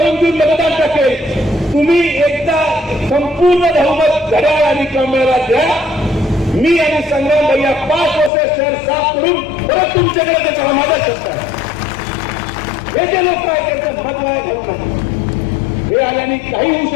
घेऊन मतदान टाकेल, तुम्ही एकदा संपूर्ण बहुमत घड्याळ आणि कमळाला द्या. मी आणि संग्राम भैया 5 वर्ष शहर साफ करून परत तुमच्याकडे त्याचा माझा शब्द आहे. हे जे लोक काय करतात मत वाया घालू नका. हे आल्याने काही होऊ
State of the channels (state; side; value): drops out; right; at 8.3 s